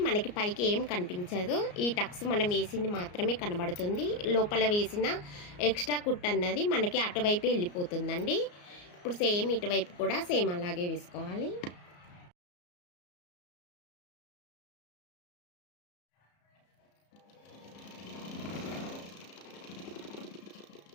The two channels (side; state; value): right; late; 34 ms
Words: మనకి పైకి ఏం కనిపించదు. ఈ టక్స్ మనం వేసింది మాత్రమే కనబడుతుంది. లోపల వేసిన ఎక్స్ట్రా కుట్టు అన్నది మనకి అటువైపే వెళ్ళిపోతుందండి. ఇప్పుడు సేమ్ ఇటువైపు కూడా సేమ్ అలాగే వేసుకోవాలి.